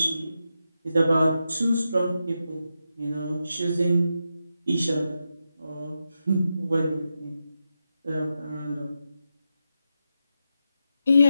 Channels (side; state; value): both; inverted; correlation -0.87